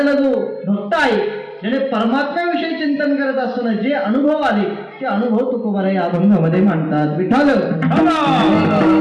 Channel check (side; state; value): both; identical; correlation 1.00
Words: जो भक्त आहे ज्याने परमात्म्याविषयी चिंतन करत असताना जे अनुभव आले ते अनुभव तुकोबाराय या अभंगामध्ये मांडतात. विठाल